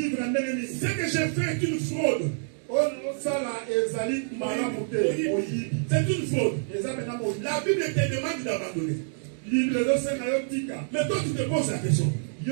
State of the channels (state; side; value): silent; left; digital silence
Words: que j'ai fait est une fraude. C'est une fraude. La Bible te demande d'abandonner. Mais toi tu te poses la question,